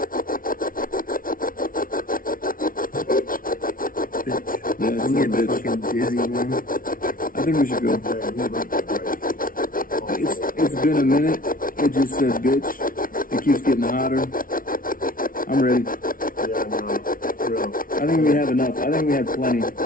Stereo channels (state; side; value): late; right; 0.41 ms